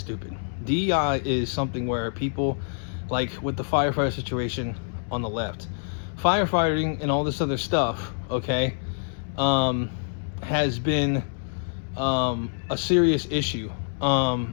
DEI is something where people, like with the firefighter situation on the left, firefighting and all this other stuff, okay, has been a serious issue.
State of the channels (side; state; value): right; silent; 61 dB below the other